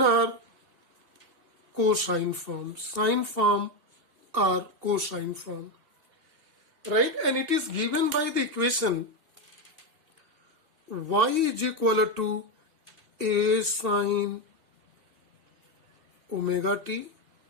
or cosine form, sine form or cosine form, right? And it is given by the equation y is equal to a sine omega t,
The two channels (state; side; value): late; left; 2.8 ms